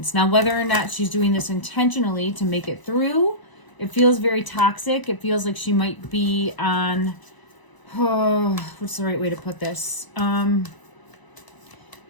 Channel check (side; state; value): right; late; 1.0 ms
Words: Now, whether or not she's doing this intentionally to make it through, it feels very toxic. It feels like she might be on, what's the right way to put this?